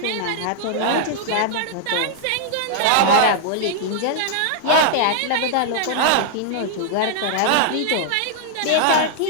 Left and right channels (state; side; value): different; both; correlation -0.01